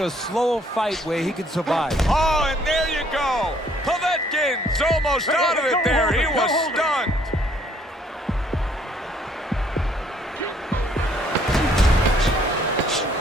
slower fight where he can survive. Oh, and there you go. Povetkin's almost out of it there. He was stunned.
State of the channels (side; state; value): both; normal; correlation 0.63